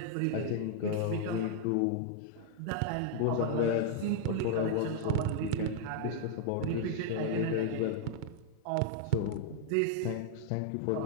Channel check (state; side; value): different; both; correlation -0.01